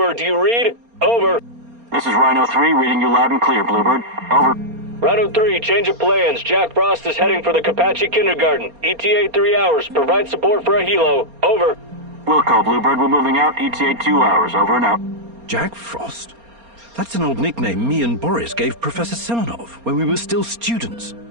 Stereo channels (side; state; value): left; late; 4.3 ms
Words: Do you read? Over. This is Rhino 3, reading you loud and clear, Bluebird. Over. Rhino 3, change of plans. Jack Frost is heading for the Kapachi Kindergarten. ETA 3 hours. Provide support for a helo. Over. Wilco, Bluebird, we're moving out. ETA 2 hours. Over and out. Jack Frost? That's an old nickname me and Boris gave Professor Semenov when we were still students.